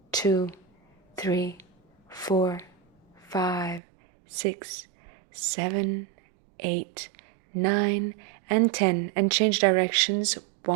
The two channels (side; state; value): left; drops out; at 3.8 s